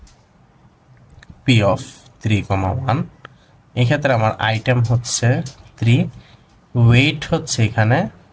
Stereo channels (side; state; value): both; identical; correlation 1.00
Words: পি অফ 3,1, এই ক্ষেত্রে আমার আইটেম হচ্ছে 3, ওয়েট হচ্ছে এখানে